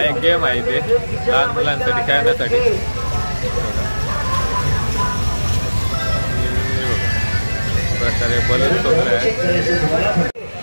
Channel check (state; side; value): inverted; both; correlation -1.00